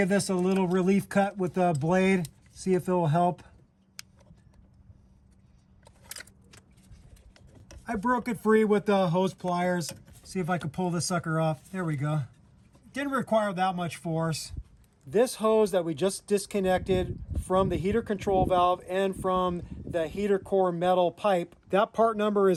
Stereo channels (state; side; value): identical; both; correlation 1.00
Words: this a little relief cut with the blade, see if it will help. I broke it free with the hose pliers. See if I can pull this sucker off. There we go. Didn't require that much force. This hose that we just disconnected from the heater control valve and from the heater core metal pipe, that part number